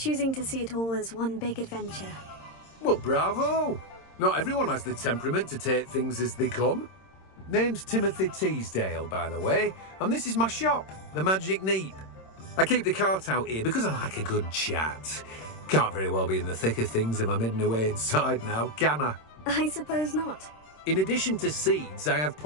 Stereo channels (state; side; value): late; right; 26 ms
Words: to see it all as one big adventure. Well, bravo. Not everyone has the temperament to take things as they come. Name's Timothy Teasdale, by the way, and this is my shop, the Magic Neep. I keep the cart out here because I like a good chat. Can't very well be in the thick of things if I'm hidden away inside now, can I? I suppose not. In addition to seeds, I have